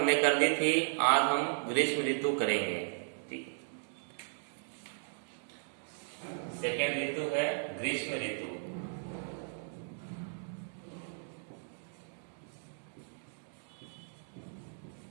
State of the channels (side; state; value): left; silent; digital silence